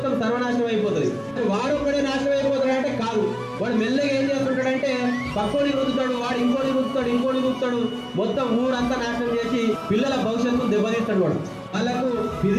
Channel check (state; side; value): identical; both; correlation 1.00